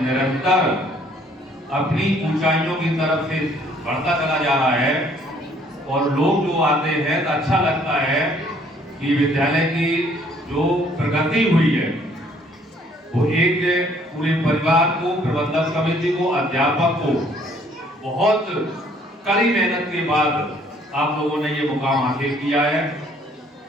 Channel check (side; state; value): both; normal; correlation 0.62